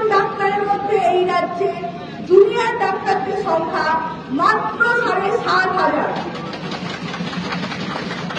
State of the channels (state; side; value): identical; both; correlation 1.00